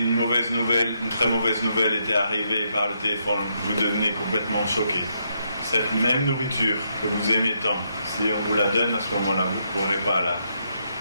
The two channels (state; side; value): inverted; both; correlation -0.78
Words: très mauvaise nouvelle était arrivée par le téléphone, vous devenez complètement choqué. Cette même nourriture que vous aimez tant, si on vous la donne à ce moment-là, vous ne pourrez pas